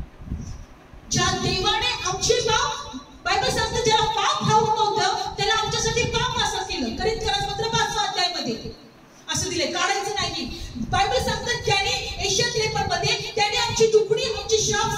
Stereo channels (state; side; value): identical; both; correlation 1.00